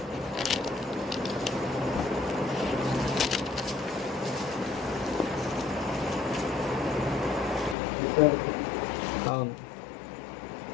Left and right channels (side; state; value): right; drops out; at 7.8 s